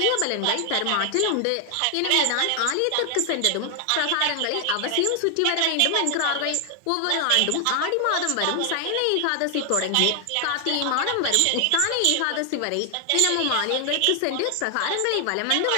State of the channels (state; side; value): different; both; correlation 0.00